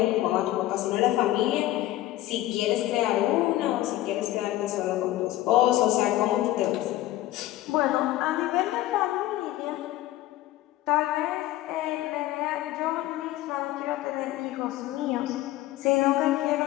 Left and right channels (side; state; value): right; quieter; 15.5 dB